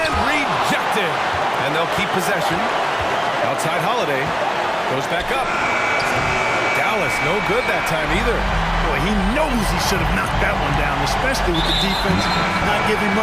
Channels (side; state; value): both; identical; correlation 1.00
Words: rejected. And they'll keep possession. Outside Holiday. Goes back up. Dallas, no good that time either. Boy, he knows he should have knocked that one down, especially with the defense not giving